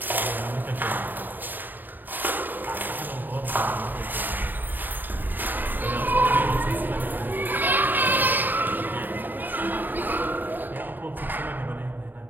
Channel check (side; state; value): left; late; 0.090 ms